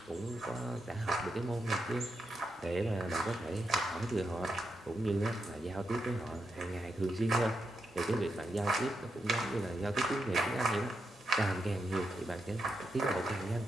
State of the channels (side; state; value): both; normal; correlation 0.84